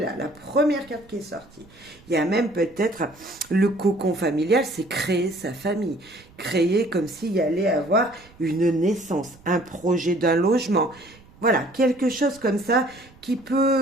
là, la première carte qui est sortie. Il y a même peut-être le cocon familial, c'est créer sa famille. Créer comme s'il y allait avoir une naissance, un projet d'un logement. Voilà, quelque chose comme ça qui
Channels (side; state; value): right; noise; rumble, 26 dB below the sound